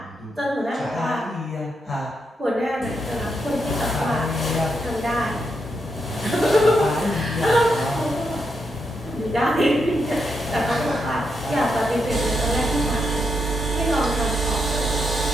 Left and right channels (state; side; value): normal; both; correlation 0.82